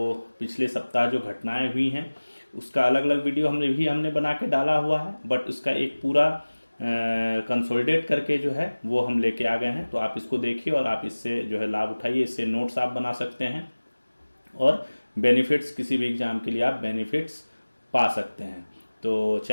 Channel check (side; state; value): both; inverted; correlation -1.00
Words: पिछले सप्ताह जो घटनाएं हुई हैं उसका अलग अलग वीडियो हमने बना के डाला हुआ है, बट उसका एक पूरा कंसोलिडेट करके जो है वो हम लेके आ गए हैं। तो आप इसको देखिए और आप इससे जो है लाभ उठाइए, इससे नोट्स आप बना सकते हैं और बेनिफिट्स, किसी भी एग्जाम के लिए आप बेनिफिट्स पा सकते हैं। तो